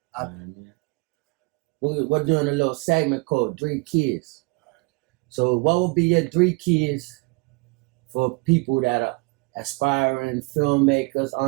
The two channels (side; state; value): left; quieter; 28.4 dB